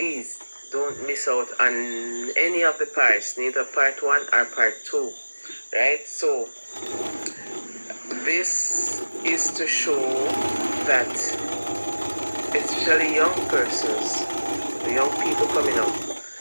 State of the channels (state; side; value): inverted; both; correlation -1.00